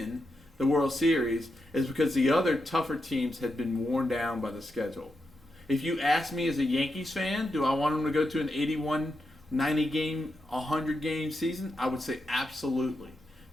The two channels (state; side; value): normal; both; correlation 0.86